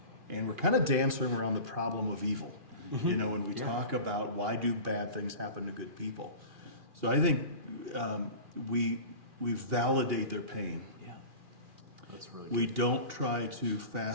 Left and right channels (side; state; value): left; late; 2.4 ms